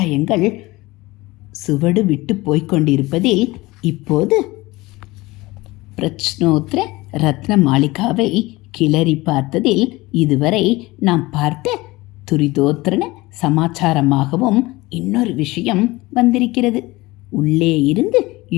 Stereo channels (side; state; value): right; quieter; 20.8 dB